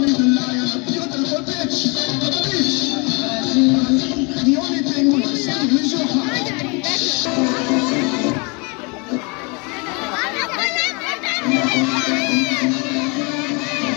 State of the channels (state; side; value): quieter; right; 30.8 dB